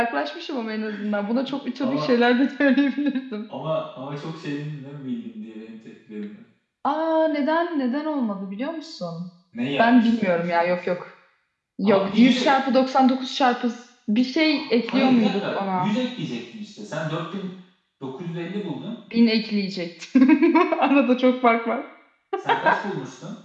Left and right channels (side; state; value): both; identical; correlation 1.00